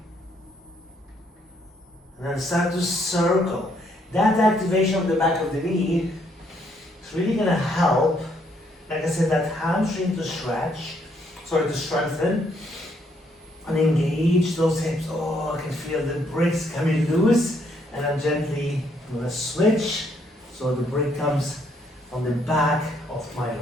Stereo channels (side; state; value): both; normal; correlation 0.71